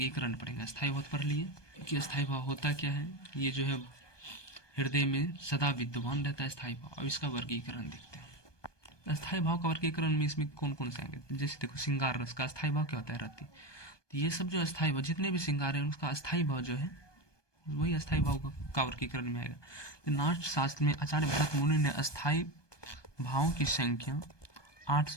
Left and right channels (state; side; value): late; right; 1.2 ms